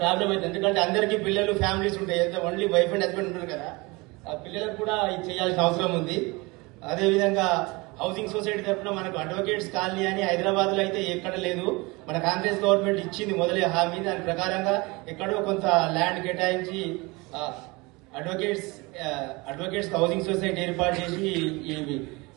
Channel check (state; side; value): quieter; left; 25.0 dB